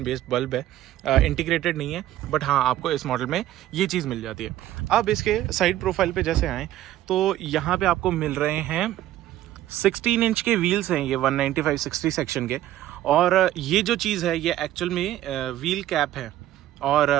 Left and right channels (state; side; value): quieter; left; 13.6 dB